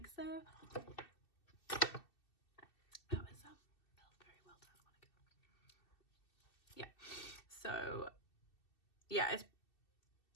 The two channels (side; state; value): right; late; 2.6 ms